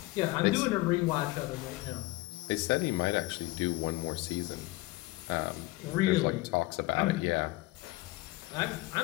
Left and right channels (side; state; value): right; quieter; 20.4 dB